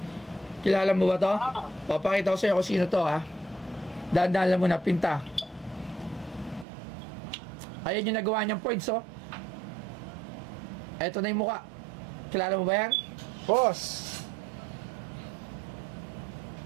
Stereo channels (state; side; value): drops out; left; at 6.7 s